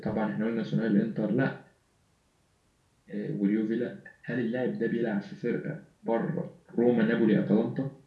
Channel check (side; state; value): both; identical; correlation 1.00